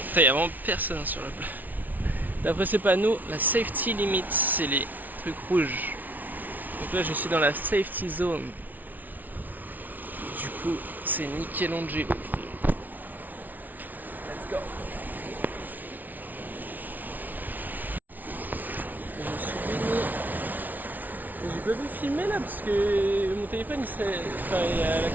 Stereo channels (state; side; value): late; left; 0.080 ms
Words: il n'y a vraiment personne sur la plage. D'après ce panneau, la safety limit, c'est les trucs rouges. Donc là, je suis dans la safety zone. Du coup, c'est Michelangelo. Let's go. Je suis baigné. J'ai pas pu filmer là parce que mon téléphone, il y a la